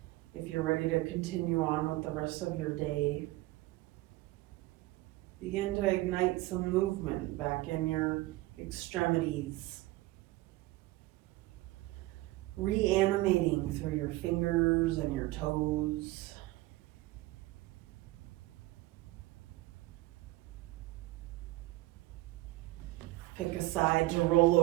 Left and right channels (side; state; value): left; quieter; 19.2 dB